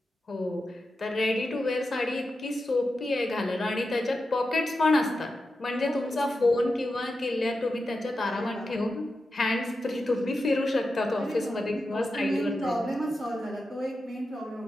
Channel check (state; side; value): normal; both; correlation 0.90